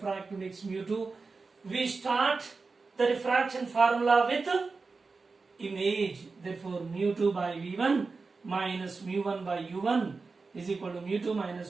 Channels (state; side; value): quieter; left; 4.2 dB